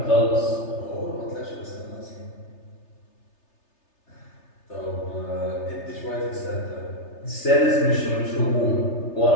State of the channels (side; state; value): right; late; 3.3 ms